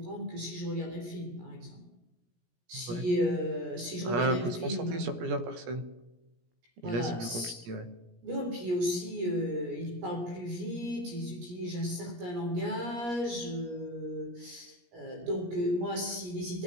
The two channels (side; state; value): left; late; 17 ms